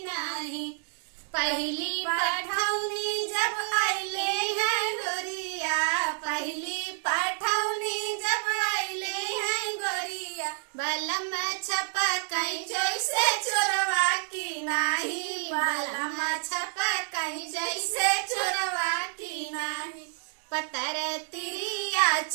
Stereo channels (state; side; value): silent; left; digital silence